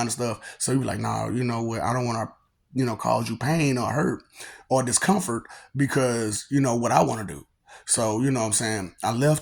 of stuff. So you be like, nah, you know what? I don't want to, cause you pain or hurt or discomfort because what I want to do. So you know what I'm saying? I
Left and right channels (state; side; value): identical; both; correlation 1.00